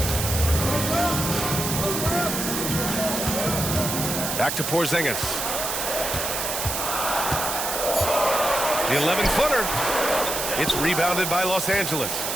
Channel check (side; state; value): right; noise; hiss, 2 dB below the sound